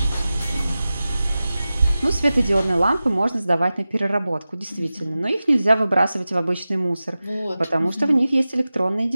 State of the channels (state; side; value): inverted; both; correlation -0.95